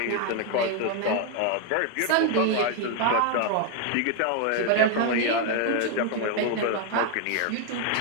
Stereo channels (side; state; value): both; different; correlation 0.01